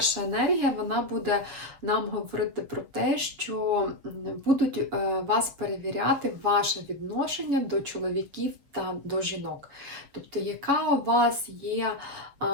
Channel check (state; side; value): late; left; 7.3 ms